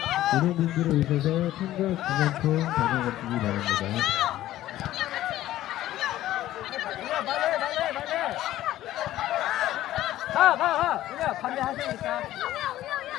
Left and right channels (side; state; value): right; quieter; 14.2 dB